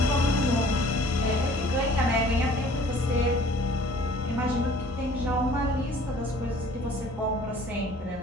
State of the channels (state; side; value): normal; both; correlation 0.52